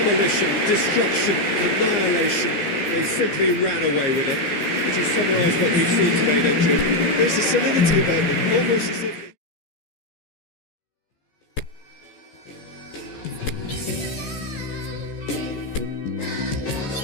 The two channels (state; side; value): late; right; 15 ms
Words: destruction, annihilation. They simply ran away with it. How would you summarise what we've seen today then, Jim? There's a solidity about them, almost as if they...